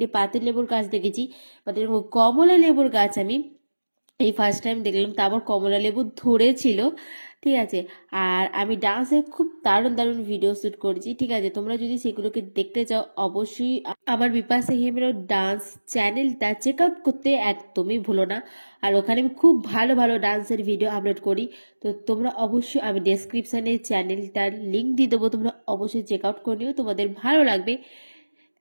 পাতি লেবুর গাছ দেখেছি, বাট এরকম কমলা লেবুর গাছ আমি এই ফার্স্ট টাইম দেখলাম। তারপর কমলা লেবু ধরেছিল। ঠিক আছে, আর আমি ডান্সের খুব দারুণ ভিডিও শ্যুট করেছি। ঠিক আছে, তোমরা যদি সেগুলোকে দেখতে চাও অবশ্যই আমার বিপাশা হিমেরও ডান্স চ্যানেলটা চেক আউট করতে একদমই ভুলো না। আর ওখানে আমি খুব ভালো ডান্সের ভিডিও আপলোড করি। তো তোমরা অবশ্যই, আমি ডেসক্রিপশানে চ্যানেলটার লিঙ্ক দিয়ে দেবো, তোমরা অবশ্যই চেক আউট করে নিও, তোমাদের ভালো লাগবে।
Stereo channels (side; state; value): both; inverted; correlation -1.00